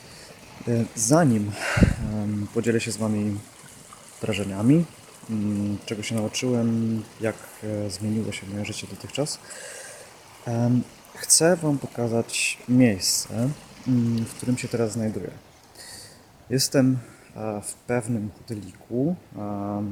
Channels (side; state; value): both; identical; correlation 1.00